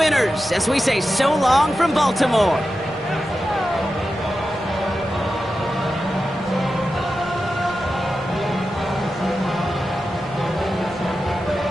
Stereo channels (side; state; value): both; normal; correlation 0.91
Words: as we say so long from Baltimore.